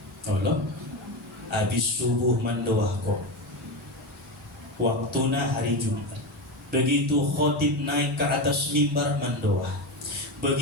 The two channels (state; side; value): normal; both; correlation 0.17